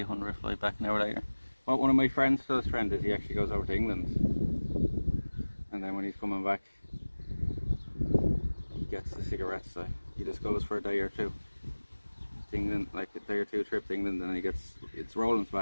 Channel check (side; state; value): both; inverted; correlation -1.00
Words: fly back an hour later. What one of my friends does, is he actually goes over to England, and then when he's coming back, he gets the cigarettes. So he just goes for a day or two to England, like a day or two trip to England, and then it's rolling